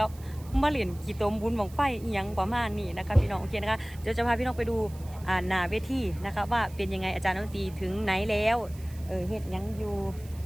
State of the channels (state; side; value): noise; right; hiss, 22 dB below the sound